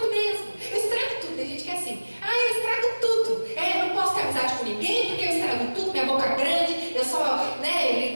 mesmo, eu estrago tudo. Tem gente que é assim, eu estrago tudo. Eu não posso ter amizade com ninguém porque eu estrago tudo, minha boca é grande, eu só,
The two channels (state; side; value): inverted; both; correlation -1.00